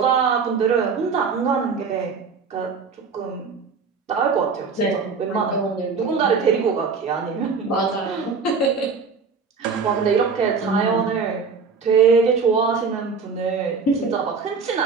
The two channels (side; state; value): left; quieter; 5.1 dB